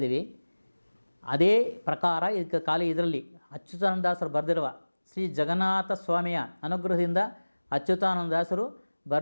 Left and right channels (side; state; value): both; inverted; correlation -1.00